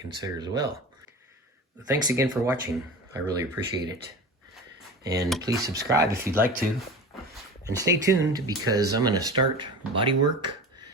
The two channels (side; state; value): both; normal; correlation 0.33